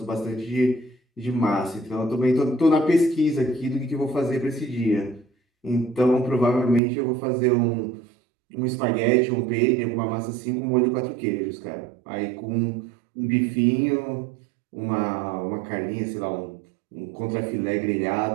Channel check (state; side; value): drops out; left; at 6.8 s